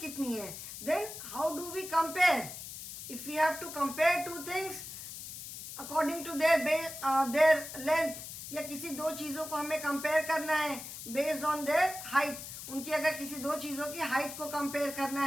है. Then how do we compare? If we have to compare two things according to their length, या किसी दो चीजों को हमें कंपेयर करना है बेस्ड ऑन देयर हाइट. उनकी अगर किसी दो चीजों की हाइट को कंपेयर करना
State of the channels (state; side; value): noise; left; hiss, 10 dB below the sound